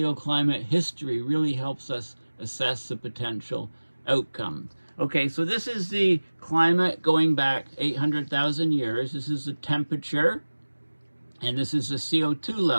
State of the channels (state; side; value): inverted; both; correlation -1.00